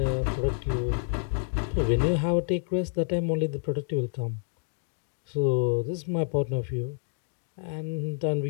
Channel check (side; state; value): right; silent; digital silence